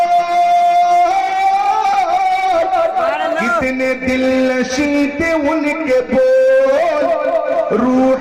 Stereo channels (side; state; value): both; identical; correlation 1.00